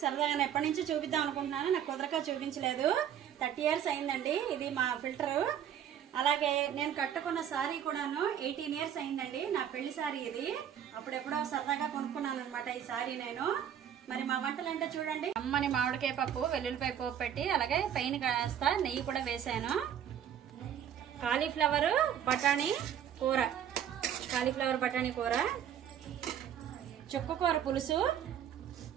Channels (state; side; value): quieter; left; 9.5 dB